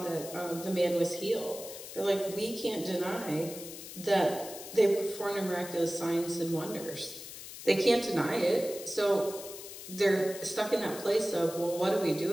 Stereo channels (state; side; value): noise; left; hiss, 12 dB below the sound